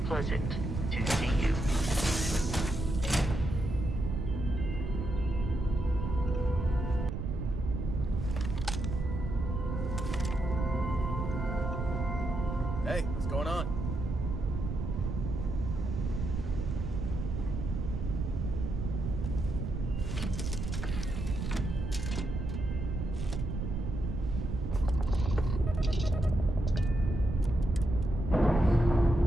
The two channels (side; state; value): right; noise; rumble, 3 dB below the sound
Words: pleasant to see you. Hey, what's going on?